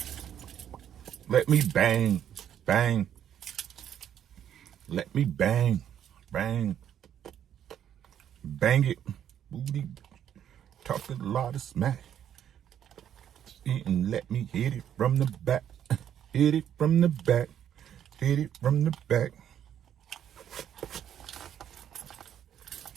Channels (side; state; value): left; quieter; 9.8 dB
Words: Let me bang. Bang. Let me bang. Bang. Bang it. Booty. Talking a lot of smack. And let me hit it from the back. Hit it from the back. Hit it from the back.